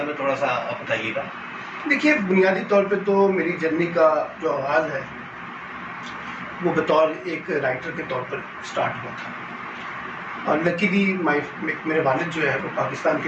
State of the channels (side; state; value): both; identical; correlation 1.00